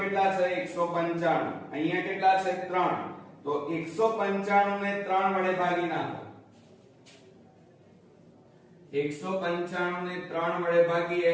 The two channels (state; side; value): identical; both; correlation 1.00